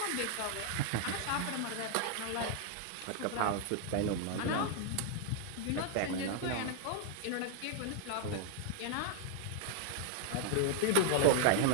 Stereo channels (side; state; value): both; different; correlation 0.00